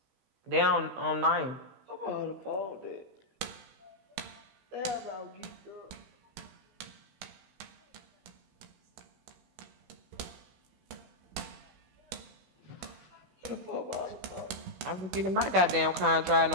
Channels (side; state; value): left; late; 16 ms